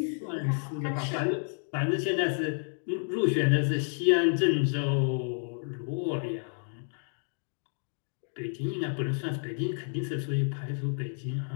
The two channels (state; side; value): silent; right; 58 dB below the other